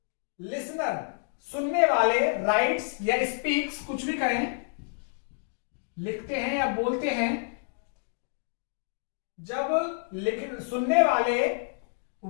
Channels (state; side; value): silent; right; digital silence